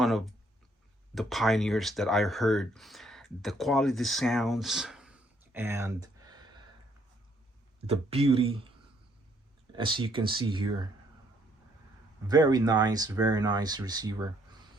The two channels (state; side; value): normal; both; correlation 0.68